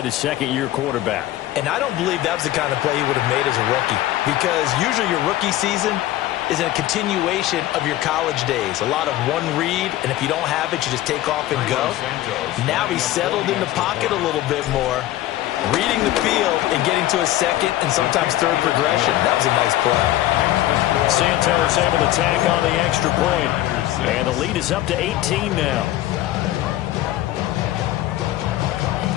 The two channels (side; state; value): right; quieter; 14.8 dB